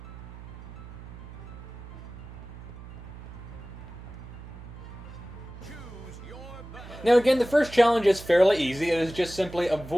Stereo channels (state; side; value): noise; right; hum, 14 dB below the sound